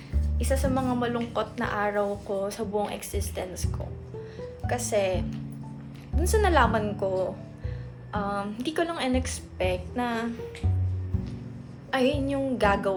isa sa mga malungkot na araw ko sa buong existence ko. Kasi, dun sa nalaman ko, hindi ko lang in-expect na ayun yung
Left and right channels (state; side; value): identical; both; correlation 1.00